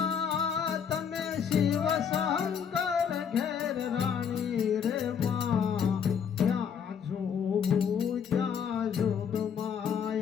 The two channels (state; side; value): quieter; right; 7.4 dB